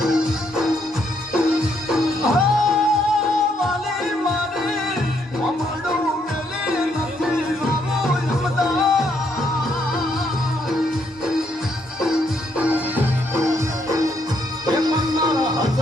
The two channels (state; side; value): normal; both; correlation 0.73